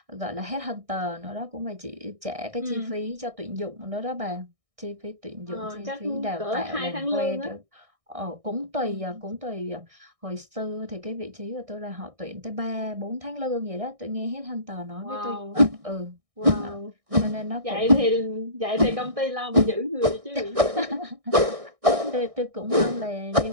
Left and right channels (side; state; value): left; late; 1.6 ms